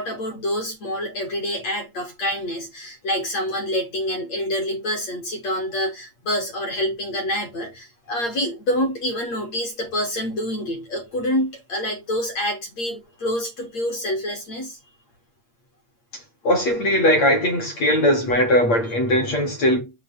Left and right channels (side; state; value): right; late; 8.6 ms